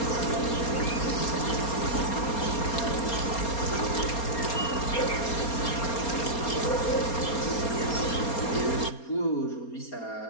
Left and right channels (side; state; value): right; late; 4.3 ms